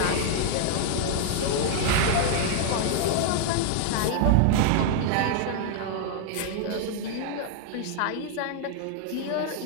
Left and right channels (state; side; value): different; both; correlation 0.00